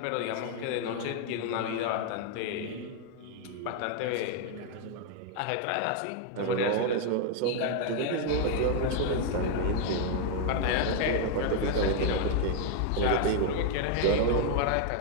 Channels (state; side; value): different; both; correlation 0.00